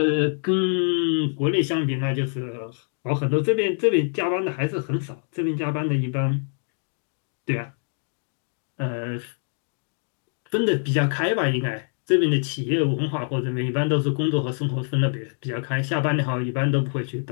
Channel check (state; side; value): silent; right; 62 dB below the other